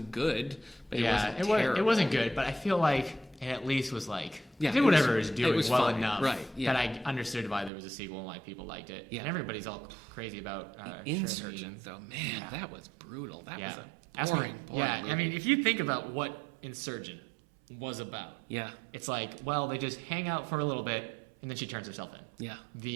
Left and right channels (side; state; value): left; drops out; at 7.7 s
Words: good, but Yeah, it wasn't terrible. it wasn't good, but I feel like it at least was like, Yeah, did it was- whatever it was doing it was well fine, enough right, yeah. that I understood why there was a sequel and why people liked it. Yeah. And everybody's all crazy about Insurgent, though, man, Yeah. that was brutal. That Yeah. was Ask a me- boring. yeah, movie. I mean, if you think about what Insurgent was about, yeah, it's like, well, they just hang out for a little bit, and then she turns herself in. yeah,